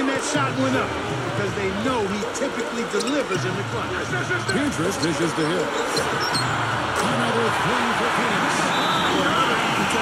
that shot went up because they know he typically delivers in the clutch. Pietrus dishes to Hill. Another three for Phoenix. Well, another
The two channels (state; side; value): identical; both; correlation 1.00